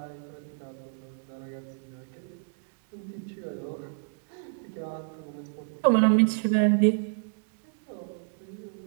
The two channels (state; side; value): silent; left; digital silence